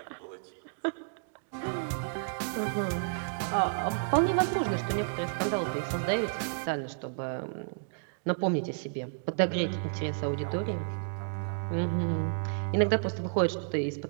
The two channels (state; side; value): silent; left; digital silence